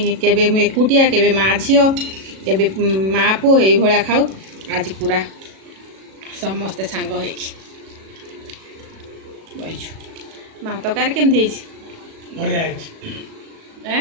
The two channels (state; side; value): late; left; 37 ms